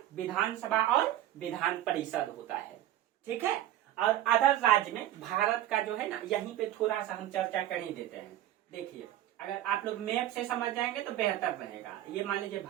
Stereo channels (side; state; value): left; quieter; 13.1 dB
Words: विधानसभा और विधान परिषद होता है, ठीक है। और अदर राज्य में भारत का जो है ना, यहीं पे थोड़ा सा हम चर्चा कर ही देते हैं। देखिए अगर आप लोग मैप से समझ जाएंगे तो बेहतर रहेगा। ये मान लीजिए